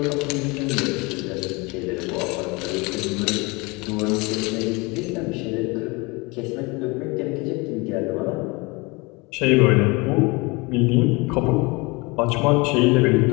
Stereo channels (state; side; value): quieter; right; 26.3 dB